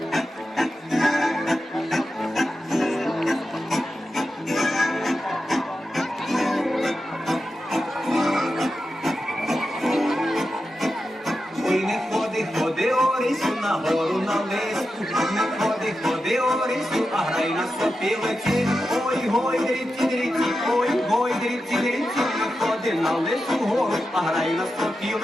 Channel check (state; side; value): normal; both; correlation 0.90